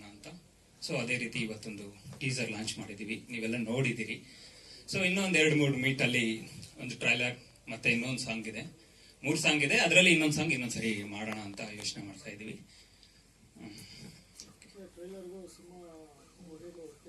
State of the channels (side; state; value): both; identical; correlation 1.00